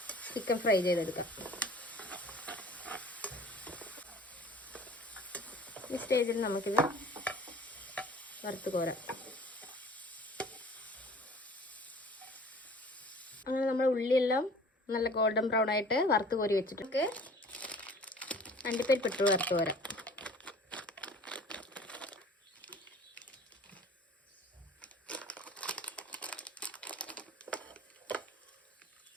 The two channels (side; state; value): both; normal; correlation 0.47